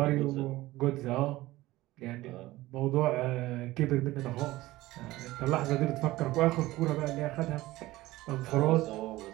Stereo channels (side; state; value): left; quieter; 17.9 dB